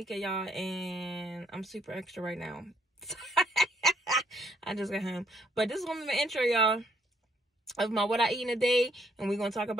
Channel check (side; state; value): both; normal; correlation 0.69